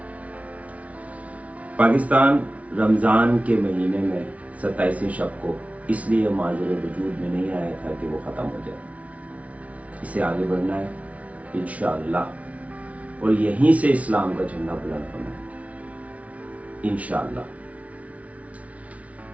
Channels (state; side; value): late; left; 0.066 ms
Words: پاکستان رمضان کے مہینے میں 27ویں شب کو اس لیے معذور وجود میں نہیں آیا تھا کہ وہ ختم ہو جائے. اسے آگے بڑھنا ہے انشاءاللہ, اور یہیں سے اسلام کا جھنڈا بلند ہونا ہے انشاءاللہ.